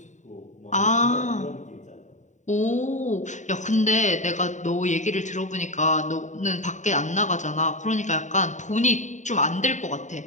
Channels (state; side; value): late; right; 0.35 ms